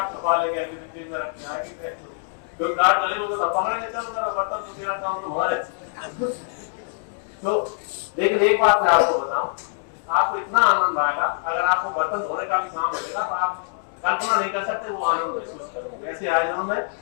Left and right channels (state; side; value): silent; right; digital silence